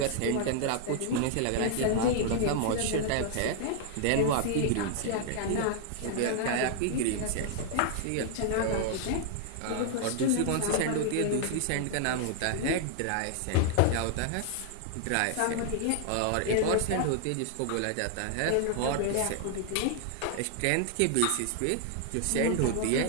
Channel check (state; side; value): different; both; correlation 0.00